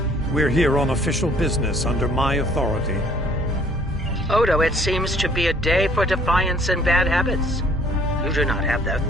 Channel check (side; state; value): both; normal; correlation 0.59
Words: We're here on official business under my authority. Odo, it seems to be a day for defiance and bad habits. You do not have the